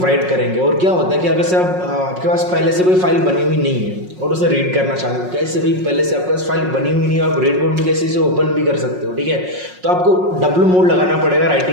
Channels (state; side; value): late; left; 5.5 ms